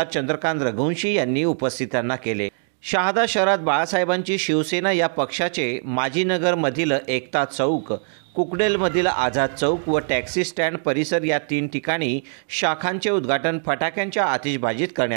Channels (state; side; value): silent; left; digital silence